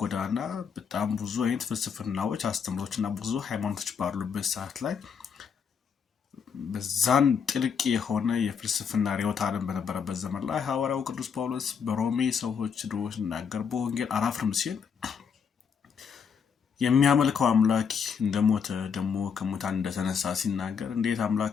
ጎዳና በጣም ብዙ አይነት ፍልስፍናዎች አስተምሮችና ብዙ ሃይማኖቶች ባሉበት ሰዓት ላይ በዛን ጥልቅ የሆነ የፍልስፍና ርዕዮተ ዓለም በነበረበት ዘመን ላይ ሐዋርያው ቅዱስ ጳውሎስ በሮሜ ሰዎች ድሮ ሲናገር በወንጌል አላፍርም ሲል የሚያመልከው አምላክ እንደሞተ ደግሞ ከሙታን እንደተነሳ ሲናገር እንዴት አምላክ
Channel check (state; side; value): quieter; right; 6.7 dB